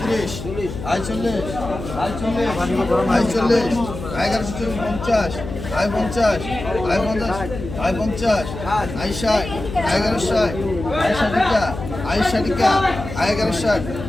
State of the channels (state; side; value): noise; left; hum, 9 dB below the sound